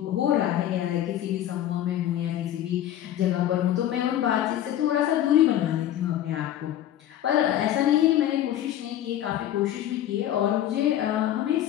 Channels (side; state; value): right; quieter; 11.9 dB